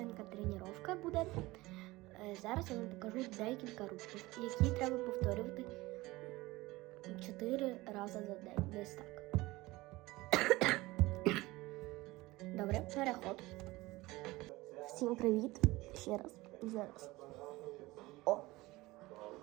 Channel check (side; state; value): left; quieter; 20.1 dB